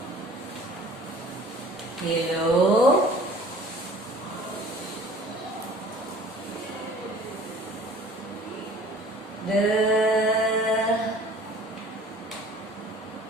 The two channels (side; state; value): both; normal; correlation 0.49